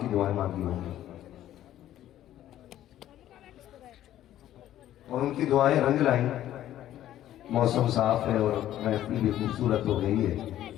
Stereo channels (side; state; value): right; quieter; 12.6 dB